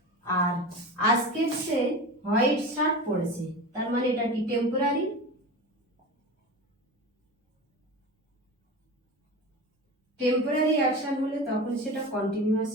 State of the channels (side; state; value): both; normal; correlation 0.29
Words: আর আজকের সে হোয়াইট শার্ট পরেছে, তার মানে এটা কি টেম্পোরারি? টেম্পোরারি অ্যাকশন হলে তখন সেটা